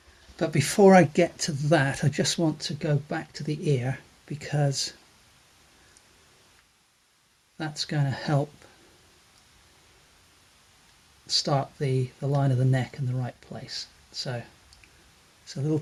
But before I get to that, I just want to go back to the ear, because that's going to help start the line of the neck in the right place. So it's a little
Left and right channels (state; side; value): identical; both; correlation 1.00